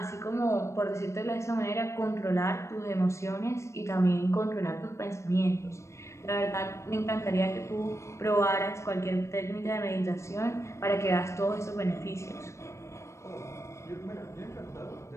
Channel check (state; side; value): late; right; 0.14 ms